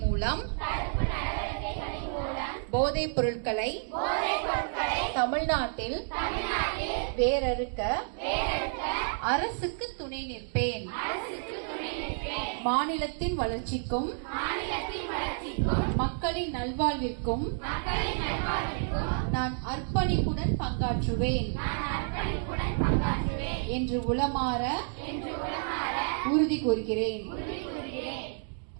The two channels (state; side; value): silent; left; 58 dB below the other